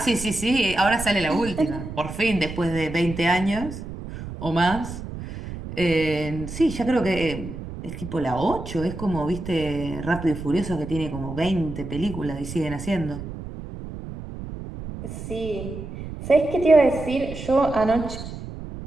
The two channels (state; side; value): noise; right; rumble, 10 dB below the sound